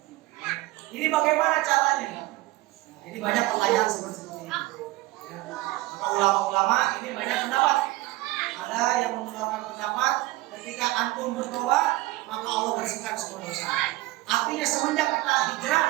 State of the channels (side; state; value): left; quieter; 19.0 dB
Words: Ini bagaimana caranya? Ini banyak pertanyaan seperti ini. Ya. Maka ulama-ulama ini banyak pendapat. Ada yang mengeluarkan pendapat ketika antum bertobat maka Allah bersihkan semua dosa. Artinya semenjak kita hijrah,